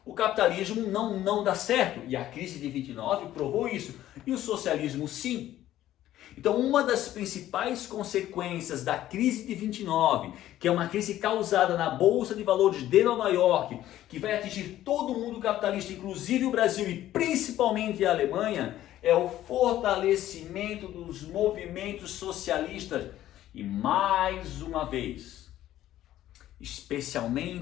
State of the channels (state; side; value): quieter; right; 13.3 dB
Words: O capitalismo não dá certo, e a crise de 29 provou isso, e o socialismo sim. Então, uma das principais consequências da crise de 29, que é uma crise causada na Bolsa de Valores de Nova York, que vai atingir todo o mundo capitalista, inclusive o Brasil e principalmente a Alemanha, é o fortalecimento dos movimentos socialistas. E mais uma vez,